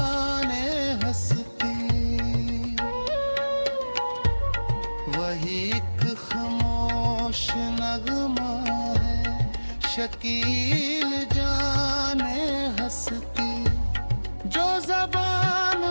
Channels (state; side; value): inverted; both; correlation -1.00